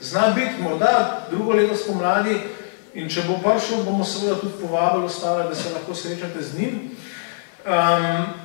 zna biti morda drugo leto spomladi in če bo prišel, bomo seveda tudi povabili ostale, da se lahko srečate z njim.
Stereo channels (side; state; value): right; silent; digital silence